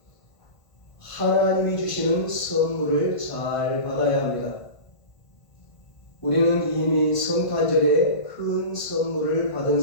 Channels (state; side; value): late; right; 1.5 ms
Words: 하나님이 주시는 선물을 잘 받아야 합니다. 우리는 이미 성탄절에 큰 선물을 받은